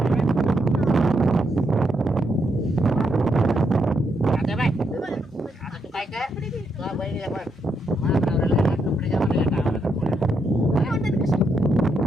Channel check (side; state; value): both; normal; correlation 0.79